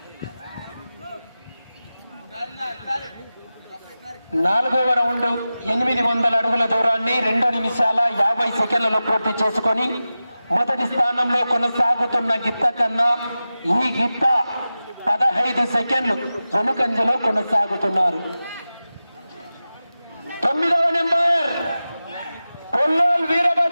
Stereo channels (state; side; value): inverted; both; correlation -0.95